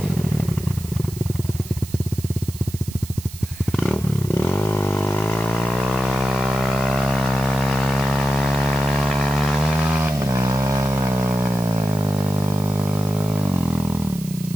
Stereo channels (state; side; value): noise; right; hiss, 16 dB below the sound